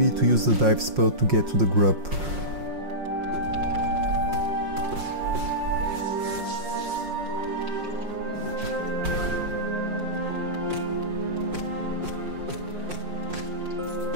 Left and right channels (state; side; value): late; left; 5.6 ms